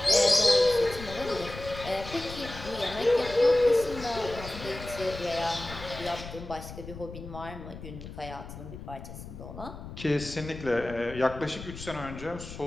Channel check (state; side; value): noise; left; rumble, 12 dB below the sound